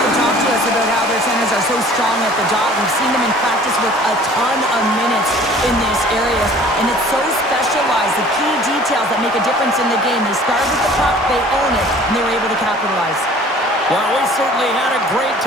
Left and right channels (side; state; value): both; normal; correlation 0.50